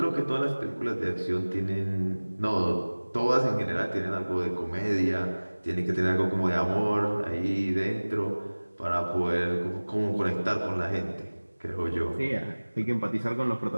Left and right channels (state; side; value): inverted; both; correlation -1.00